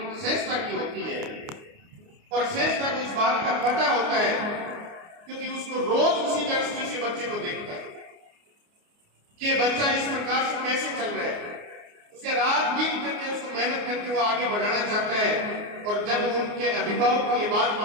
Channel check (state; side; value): late; left; 29 ms